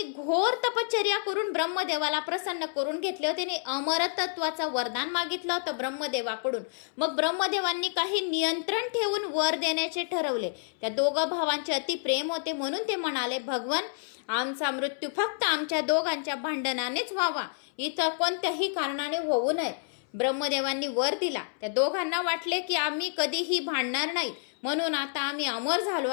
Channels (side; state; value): right; silent; 59 dB below the other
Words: घोर तपश्चर्या करून ब्रह्मदेवाला प्रसन्न करून घेतले होते आणि अमरतत्वाचं वरदान मागितलं होतं ब्रह्मदेवाकडून. मग ब्रह्मदेवांनी काही नियंत्रण ठेवून वर देण्याचे ठरवले. त्या 2 भावांचे अति प्रेम होते, म्हणून ते म्हणाले, भगवान आमचा मृत्यू फक्त आमच्या दोघांच्या भांडणानेच व्हावा, इतर कोणत्याही कारणाने होऊ नये. ब्रह्मदेवांनी वर दिला. त्या दोघांना वाटले की आम्ही कधीही भांडणार नाही, म्हणून आता आम्ही अमर झालो